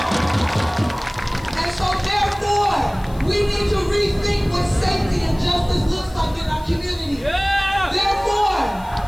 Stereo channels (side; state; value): left; noise; hiss, 24 dB below the sound